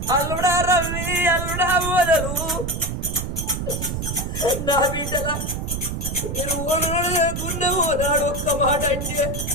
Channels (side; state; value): right; noise; rumble, 4 dB below the sound